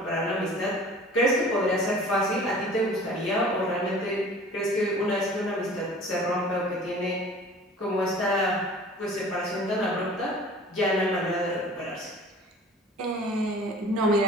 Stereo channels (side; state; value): both; normal; correlation 0.45